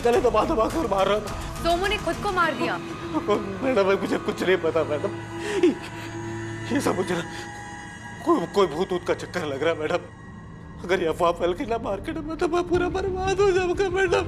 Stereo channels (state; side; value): identical; both; correlation 1.00